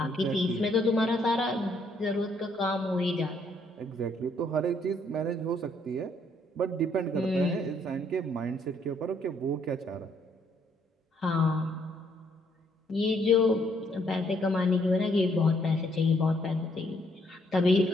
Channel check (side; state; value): both; normal; correlation 0.69